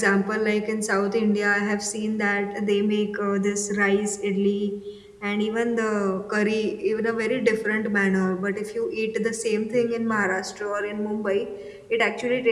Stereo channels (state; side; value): identical; both; correlation 1.00